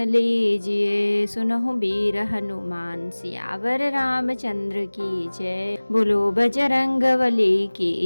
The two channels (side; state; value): both; inverted; correlation -1.00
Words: लीजिए, सुनहु वीर हनुमान सियावर रामचंद्र की जय। बोलो बजरंग बली